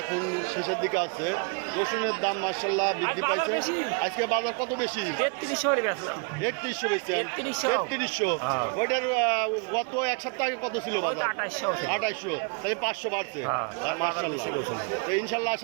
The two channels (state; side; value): quieter; left; 36.6 dB